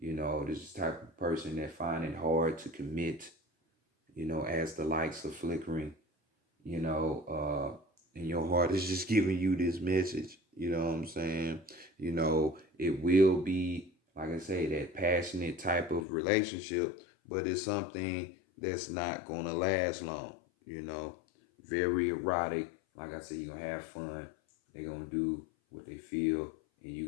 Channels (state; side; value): drops out; right; at 16.1 s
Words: know, this is the type of person that find it hard to commit, you know, as the lights are flickering, you know, and your heart is just giving you this message. You know what I'm saying? You know, it will be, like I say, that passionate type of relationship, but it's something that's not going to last long, you know. Very erotic. Like I said, you're going to have fun. They're going to do what they feel, and you're